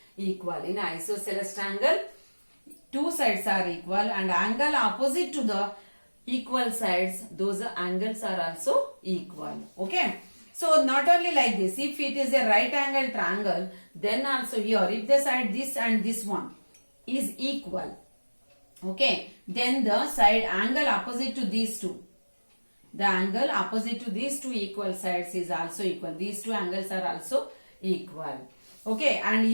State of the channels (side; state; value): both; inverted; correlation -1.00